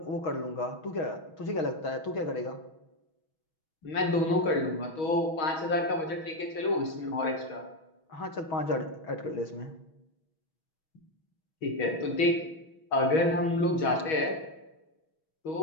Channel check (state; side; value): late; right; 6.3 ms